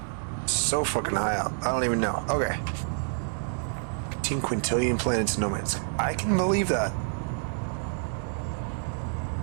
so fucking high up. I don't even know. Okay. 18 quintillion planets in no man's sky. I can believe that.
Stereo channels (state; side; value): silent; left; digital silence